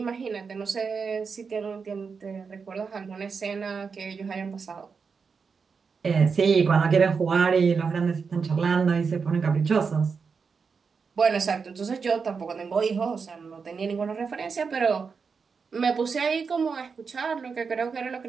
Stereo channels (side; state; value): left; quieter; 5.4 dB